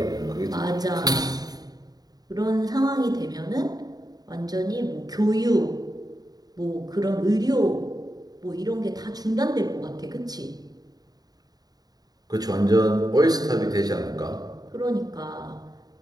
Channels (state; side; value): late; left; 0.19 ms